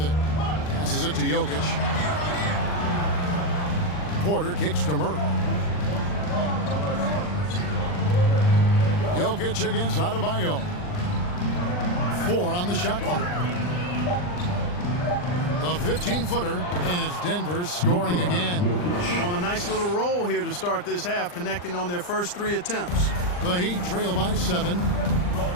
it. Passes it to Jokic. Porter kicks to Murray. Jokic against Adebayo. 4 on the shot clock. The 15-footer, and it's Denver scoring again. On a nice little roll here to start this half, connecting on their first 3 attempts. The Heat trail by 7.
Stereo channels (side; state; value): right; late; 39 ms